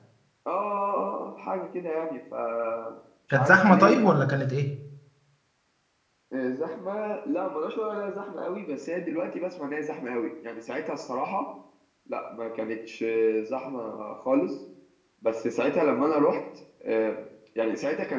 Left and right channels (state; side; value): identical; both; correlation 1.00